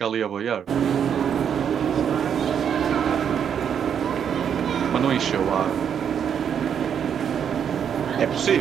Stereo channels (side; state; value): left; quieter; 8.2 dB